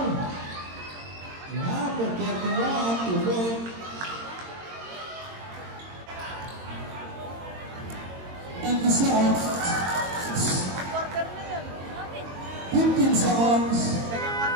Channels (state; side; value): late; left; 22 ms